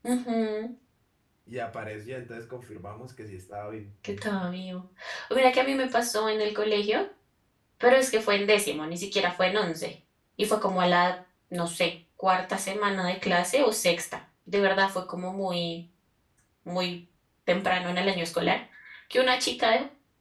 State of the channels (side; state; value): both; identical; correlation 1.00